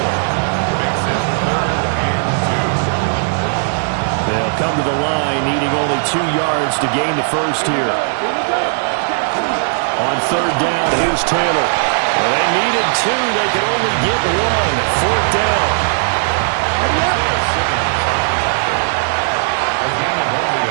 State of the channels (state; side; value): silent; left; 69 dB below the other